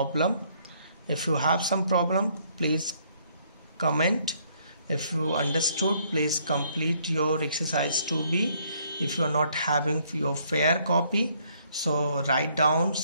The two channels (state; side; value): inverted; both; correlation -0.67